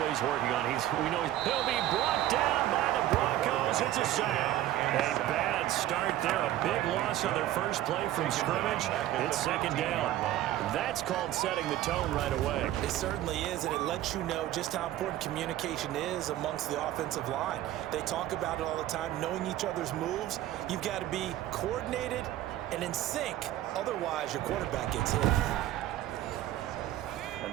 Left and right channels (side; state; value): left; quieter; 13.6 dB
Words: working on, we know he'll be brought down by the Broncos. It's a sack. A bad start there, a big loss on their first play from scrimmage. It's second down. That's called setting the tone right away. It certainly is, and it lets you know just how important communication is amongst the offensive line. They talk about it all the time, knowing each other's moves. You've got to be coordinated and in sync. Otherwise, your quarterback gets hit. And